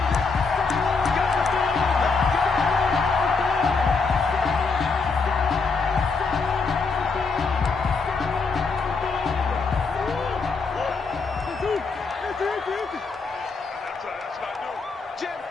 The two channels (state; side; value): quieter; right; 4.5 dB